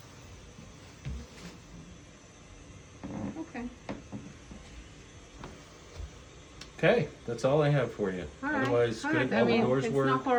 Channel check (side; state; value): both; identical; correlation 1.00